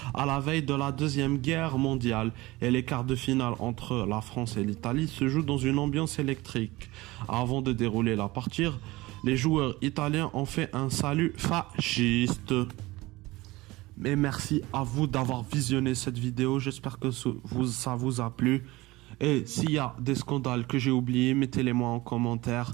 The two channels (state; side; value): quieter; left; 20.3 dB